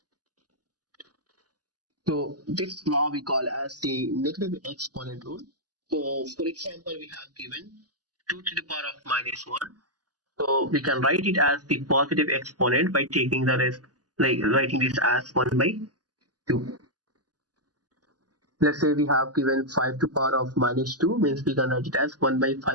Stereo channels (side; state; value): left; late; 0.68 ms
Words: So this law we call as the negative exponent rule. So for example, we have given 2 to the power of minus 1. So we can write it as the positive exponent by taking the rest, like writing this as 1 by 2. Let's say we have given 5 to the power of minus 2, means we can write it as 1 by 5